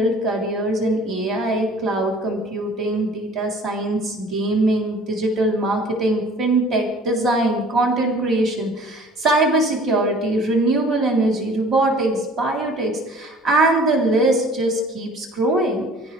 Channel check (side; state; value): both; normal; correlation 0.50